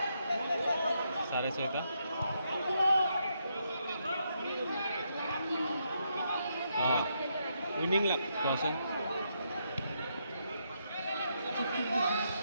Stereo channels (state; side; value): inverted; both; correlation -0.79